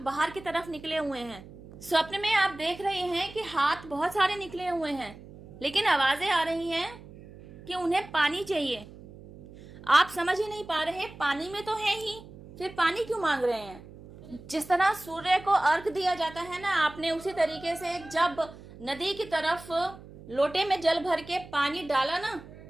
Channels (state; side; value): noise; right; hum, 18 dB below the sound